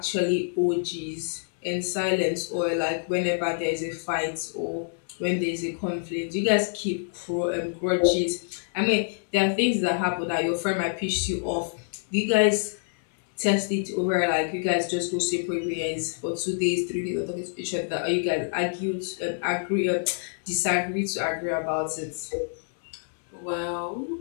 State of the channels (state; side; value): silent; right; digital silence